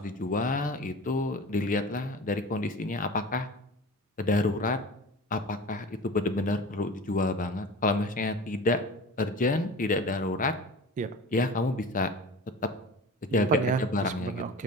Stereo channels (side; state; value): both; normal; correlation 0.36